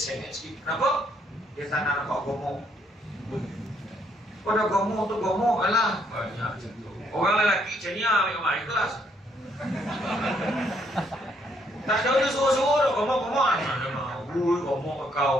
Kenapa? Dia tak nak nampak gomong. Pada gomong tu gomong lah. Orang lelaki macam ni ambil gambar ikhlas. Tak ada dia suruh-suruh dah gomong-gomong. Ui, gomong ke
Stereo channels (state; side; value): normal; both; correlation 0.71